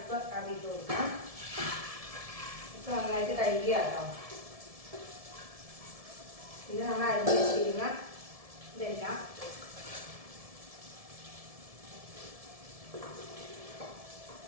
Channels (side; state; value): left; late; 1.7 ms